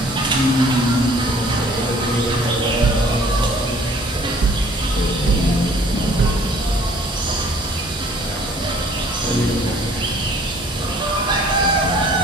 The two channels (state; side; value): normal; both; correlation 0.55